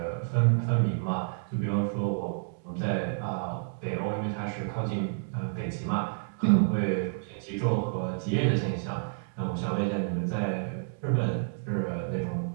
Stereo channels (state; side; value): silent; left; digital silence